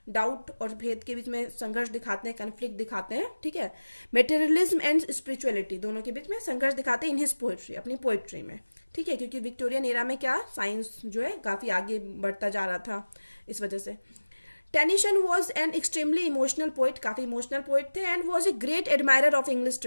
डाउट और भेद के बीच में संघर्ष दिखाते हैं, कन्फ्लिक्ट दिखाते हैं, ठीक है। मेटेरियलिज्म एंड स्पिरिचुअलिटी दोनों के बीच में संघर्ष दिखाते हैं इन हिज पोएट्री, अपनी पोएट्री में, ठीक है, क्योंकि विक्टोरियन एरा में क्या साइंस जो है काफ़ी आगे बढ़ता जा रहा था, इस वजह से। Tennyson was an extremely emotional poet, काफ़ी इमोशनल पोइट थे, and was a great admirer of English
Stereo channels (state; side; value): inverted; both; correlation -1.00